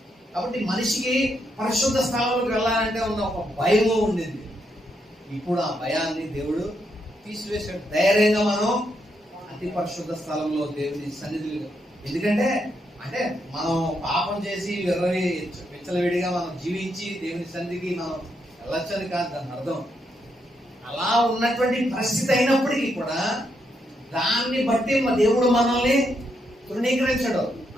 కాబట్టి మనిషికి పరిశుద్ధ స్థలంలోకి వెళ్ళాలంటే ఉన్న ఒక భయము ఉండింది. ఇప్పుడు ఆ భయాన్ని దేవుడు తీసివేసాడు. ధైర్యంగా మనం అతి పరిశుద్ధ స్థలంలో దేవుని సన్నిధిలో, ఎందుకంటే అంటే మనం పాపం చేసి విచ్చలవిడిగా మనం జీవించి దేవుని సన్నిధికి మనం వెళ్ళొచ్చని కాదు దాని అర్థం. అలా ఉన్నటువంటి పరిస్థితి అయినప్పటికీ కూడా దాన్ని బట్టి దేవుడు మనల్ని తృణీకరించడు.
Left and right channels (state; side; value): normal; both; correlation 0.79